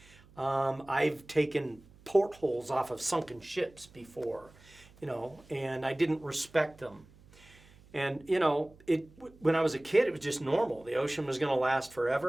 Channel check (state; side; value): noise; right; hum, 25 dB below the sound